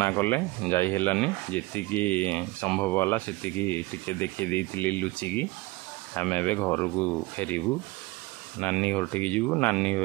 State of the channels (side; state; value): left; quieter; 21.1 dB